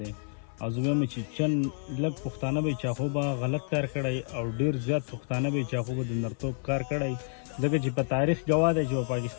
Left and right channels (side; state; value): right; silent; 56 dB below the other